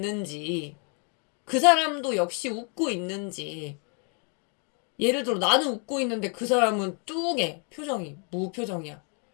그 사람도 역시 웃고 있는지. 예를 들어 나는 웃고 있는데 그 사람은 뚱해, 표정이 무표정이야.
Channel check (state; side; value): quieter; right; 38.7 dB